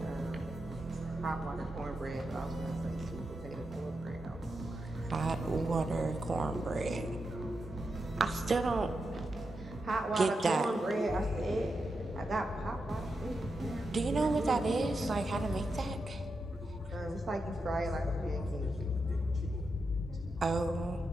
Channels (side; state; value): both; normal; correlation 0.87